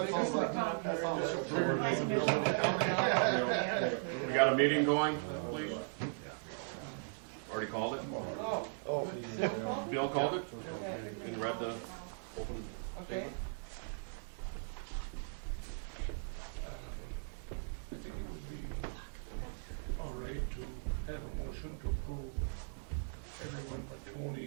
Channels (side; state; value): left; silent; digital silence